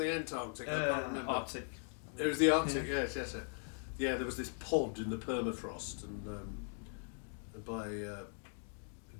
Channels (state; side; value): silent; right; 51 dB below the other